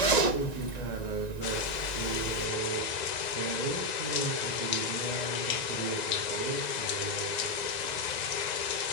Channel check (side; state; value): right; late; 1.9 ms